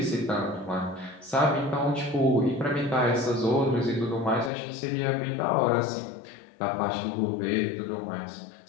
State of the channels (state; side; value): drops out; right; at 4.5 s